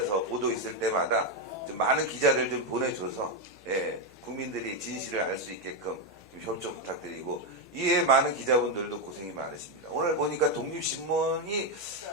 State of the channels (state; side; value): noise; left; hum, 28 dB below the sound